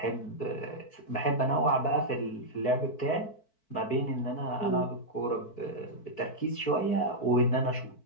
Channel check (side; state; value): right; late; 4.6 ms